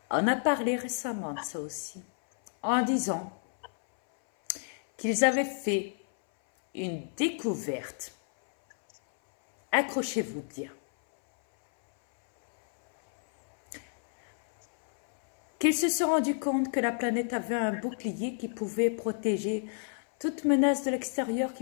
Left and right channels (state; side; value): silent; right; 58 dB below the other